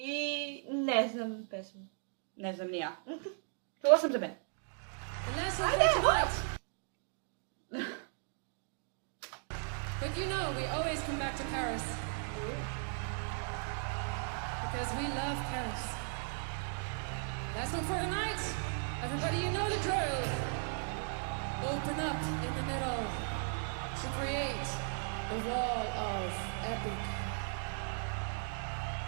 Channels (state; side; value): silent; left; 53 dB below the other